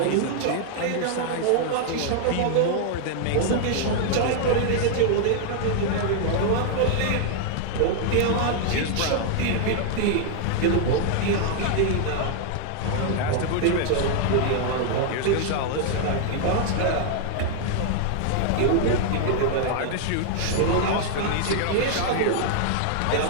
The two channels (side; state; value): both; different; correlation 0.00